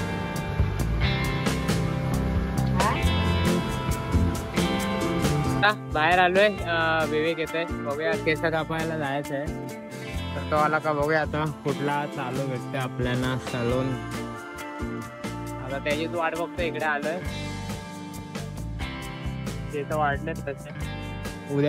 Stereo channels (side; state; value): both; identical; correlation 1.00